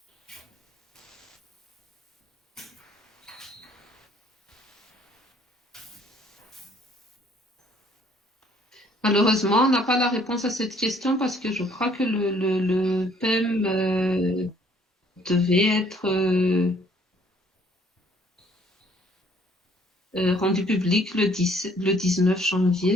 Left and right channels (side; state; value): both; normal; correlation 0.61